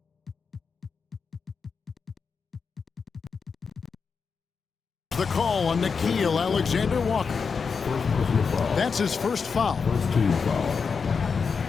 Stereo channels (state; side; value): quieter; right; 5.5 dB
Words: the call on Nickeil Alexander-Walker. That's his first foul.